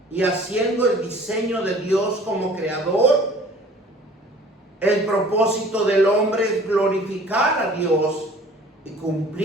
y haciendo el diseño de Dios como creador. El propósito del hombre es glorificar a Dios y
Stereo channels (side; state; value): both; normal; correlation 0.50